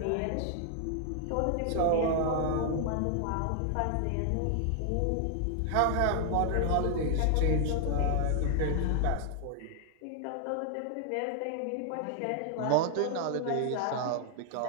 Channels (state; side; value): different; both; correlation 0.00